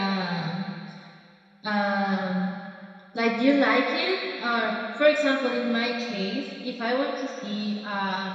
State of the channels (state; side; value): identical; both; correlation 1.00